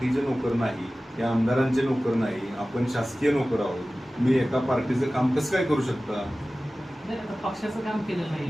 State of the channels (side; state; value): both; normal; correlation 0.97